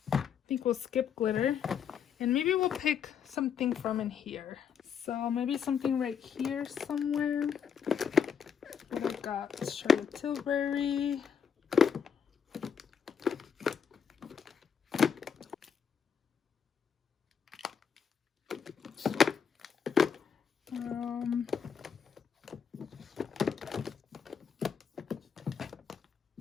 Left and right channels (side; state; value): right; quieter; 7.3 dB